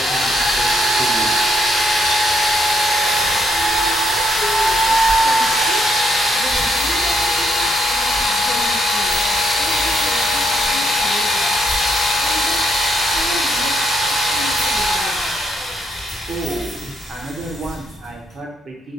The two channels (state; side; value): normal; both; correlation 0.75